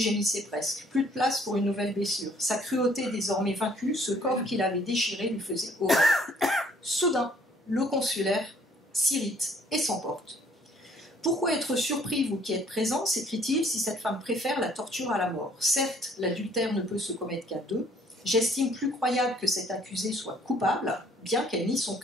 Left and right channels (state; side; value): normal; both; correlation 0.60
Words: presque. Plus de place pour une nouvelle blessure. Sa cruauté désormais vaincue, ce corps qu'il avait déchiré lui faisait horreur. Soudain, le consulaire s'irrite et s'emporte. « Pourquoi être surpris, vous qui êtes présents, s'écrie-t-il, si cette femme préfère la torture à la mort? Certes, l'adultère ne peut se commettre qu'à deux. J'estime plus croyable que cette accusée soit coupable, bien qu'elle nie son